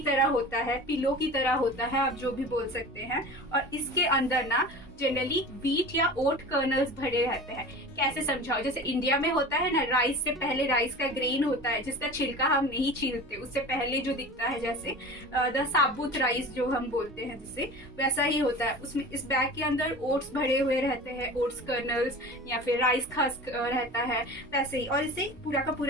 तरह होता है, पिलो की तरह होता है, आप जो भी बोल सकते हैं। और इसके अंदर ना जनरली व्हीट या ओट कर्नल्स भरे रहते हैं। कैसे समझाओ, जैसे इंडिया में होता है ना, राइस से पहले राइस का ग्रेन होता है जिसका छिलका हम नहीं छीलते, उससे पहले जो दिखता है जैसे द साबुत राइस जो हम बोलते हैं, जिससे वैसा ही होता है। उसमें इस बैग के अंदर ओट्स भरे हुए रहते हैं, ओट्स कर्नल्स या फिर राइस खस्क रहता है वैसे ही। और इसे पूरा का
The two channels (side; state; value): both; normal; correlation 0.36